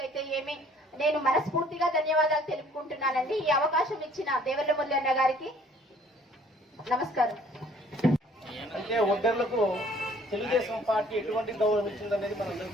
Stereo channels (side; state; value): both; normal; correlation 0.57